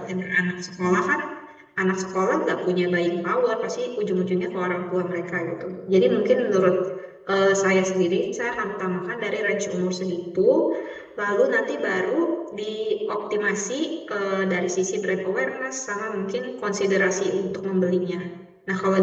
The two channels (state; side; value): identical; both; correlation 1.00